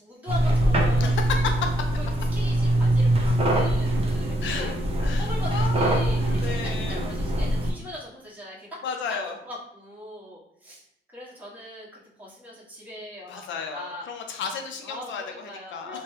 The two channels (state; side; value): normal; both; correlation 0.73